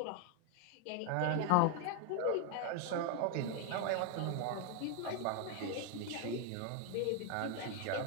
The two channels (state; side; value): different; both; correlation 0.01